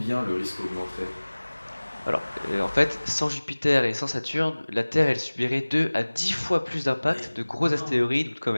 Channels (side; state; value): both; inverted; correlation -1.00